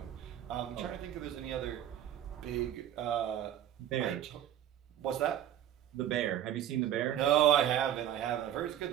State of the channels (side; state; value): left; quieter; 11.1 dB